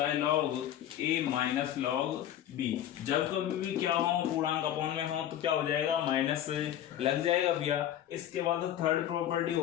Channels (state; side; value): quieter; right; 11.4 dB